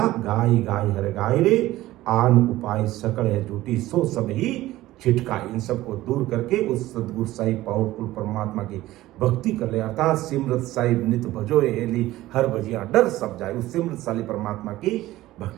गाय गाय हर गाय रे, आन उपाय सकल है झूठी, सो सब ही छिटका। इन सबको दूर करके उस सदगुरु साहिब पावरफुल परमात्मा की भक्ति कर ले, अर्थात सिमरत साहिब नित भजो हेली, हर भजिया डर सब जाए, उस सिमरत साली परमात्मा की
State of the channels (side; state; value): left; quieter; 16.3 dB